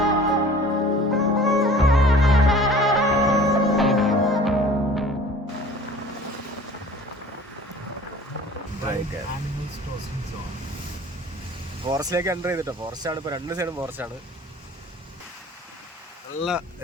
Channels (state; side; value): normal; both; correlation 0.46